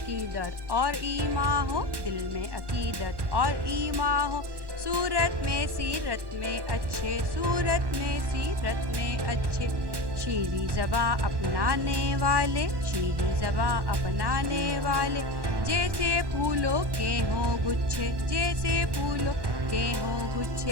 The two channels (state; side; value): late; left; 1.1 ms